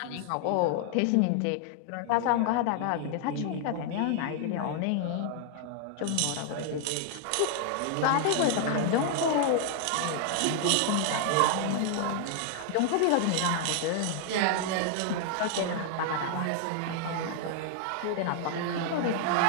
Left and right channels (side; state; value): both; different; correlation 0.00